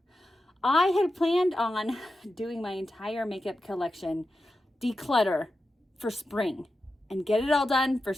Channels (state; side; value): normal; both; correlation 0.91